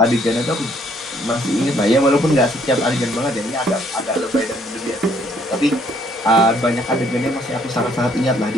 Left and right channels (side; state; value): both; normal; correlation 0.66